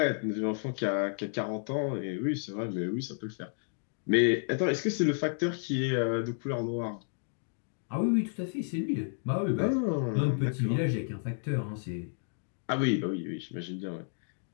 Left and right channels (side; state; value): right; silent; digital silence